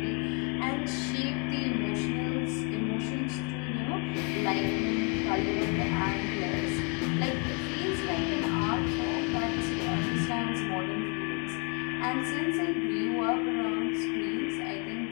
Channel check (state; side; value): quieter; right; 36.1 dB